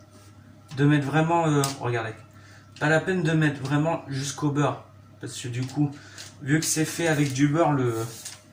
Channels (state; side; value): identical; both; correlation 1.00